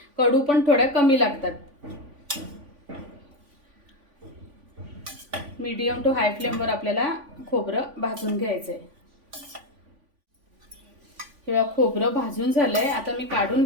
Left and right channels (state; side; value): late; left; 3.5 ms